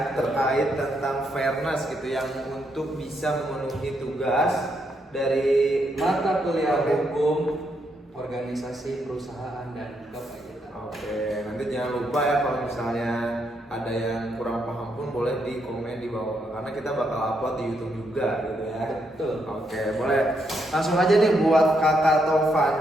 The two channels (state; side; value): normal; both; correlation 0.78